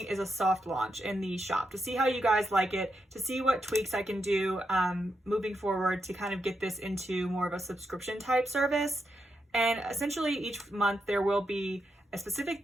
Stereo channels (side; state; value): both; normal; correlation 0.84